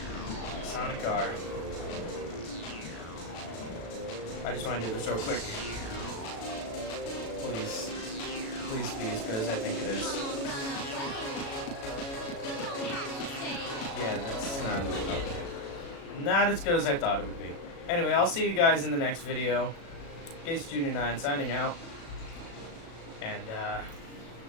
Sonic R. I just want to do this real quick. Please. Please be as good as I think it is. Yeah, that's not as good as I thought it would be. Anyway, I'll see you guys in the next video. Case Junior 9 signing out. And,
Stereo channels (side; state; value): right; late; 36 ms